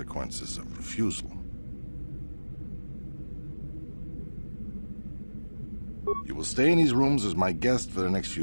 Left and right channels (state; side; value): inverted; both; correlation -1.00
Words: of refusal. You will stay in these rooms as my guest for the next